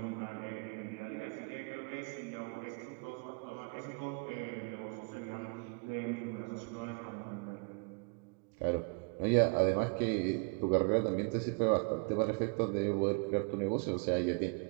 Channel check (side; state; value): left; quieter; 35.3 dB